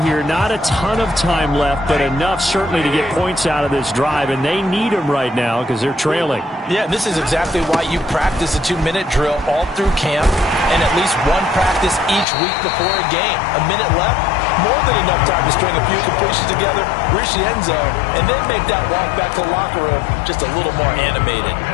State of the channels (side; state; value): right; drops out; at 12.2 s